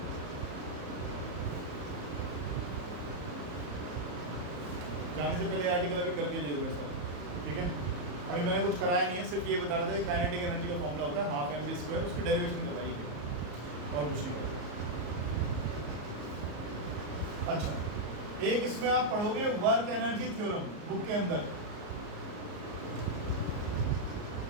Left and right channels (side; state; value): left; late; 34 ms